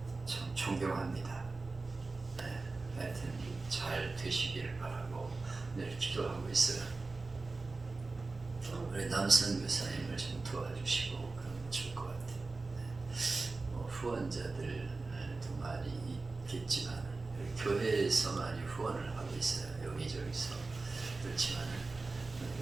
참 존경합니다. 하여튼 잘 되시기를 바라고 늘 기도하고 있어요. 우리 남선 교사님을 좀 도와주시고 그러면 좋을 것 같아요. 후원자들도 많이 있겠지만 교회에서 많이 후원을 하고 있어요. 여기저기서. 그렇지만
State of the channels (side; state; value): left; quieter; 3.7 dB